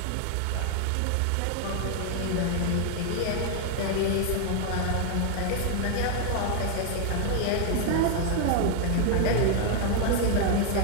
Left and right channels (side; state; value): both; different; correlation 0.00